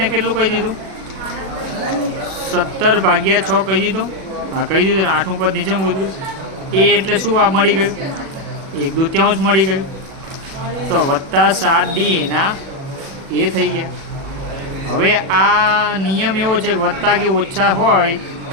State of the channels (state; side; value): late; left; 37 ms